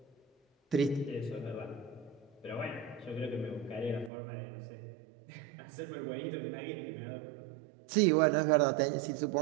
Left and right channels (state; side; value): drops out; left; at 4.1 s